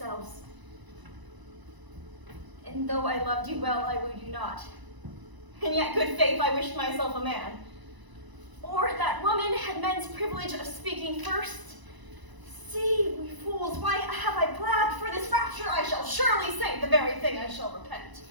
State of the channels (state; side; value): late; left; 1.0 ms